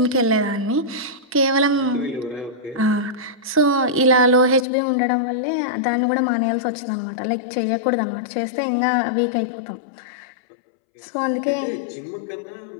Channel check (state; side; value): drops out; right; at 4.7 s